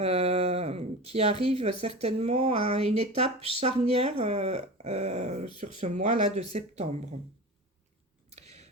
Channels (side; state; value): both; normal; correlation 0.31